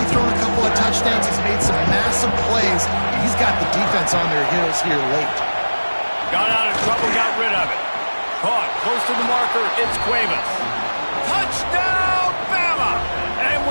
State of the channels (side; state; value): both; inverted; correlation -1.00